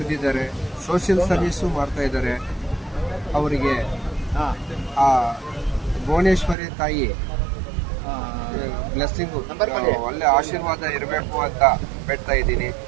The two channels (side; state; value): left; drops out; at 6.6 s